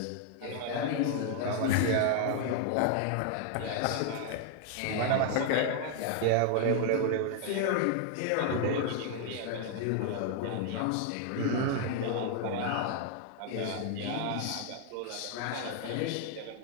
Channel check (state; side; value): different; both; correlation 0.00